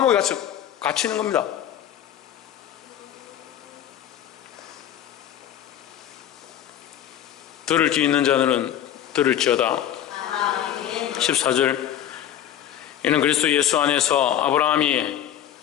갇히는 겁니다. 들을 귀 있는 자들은 들을지어다. 14절, 이는 그리스도 예수 안에서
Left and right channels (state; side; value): quieter; right; 10.8 dB